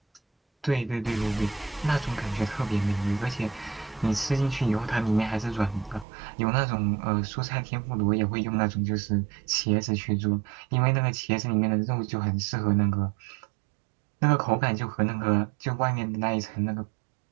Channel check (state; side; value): drops out; left; at 6.1 s